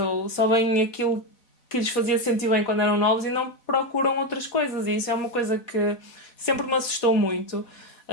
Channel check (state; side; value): late; right; 4.2 ms